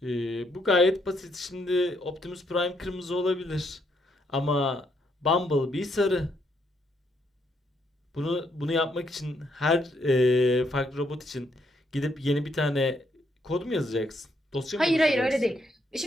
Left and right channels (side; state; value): both; normal; correlation 0.74